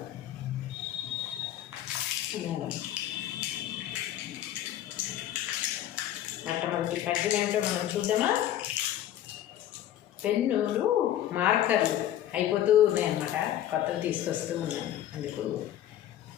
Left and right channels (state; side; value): quieter; right; 12.0 dB